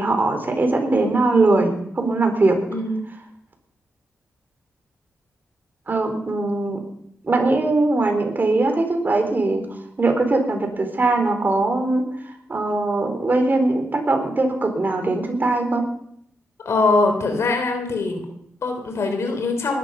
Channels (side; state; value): both; normal; correlation 0.84